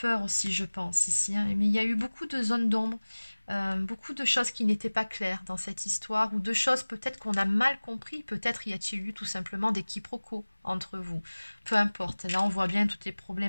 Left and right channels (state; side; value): inverted; both; correlation -1.00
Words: aussi, je pense, ici. Mais il y a eu beaucoup de zones d'ombre, beaucoup de choses qui n'étaient pas claires dans cette histoire, ou de choses peut-être qu'on a mal compris. Peut-être y a-t-il eu tout simplement des quiproquos entre vous. Peu importe. Là, on voit bien toutes les